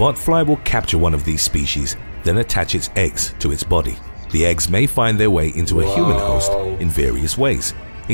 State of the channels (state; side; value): inverted; both; correlation -1.00